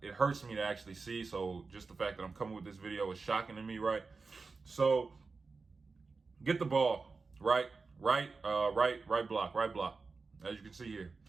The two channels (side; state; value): left; quieter; 4.3 dB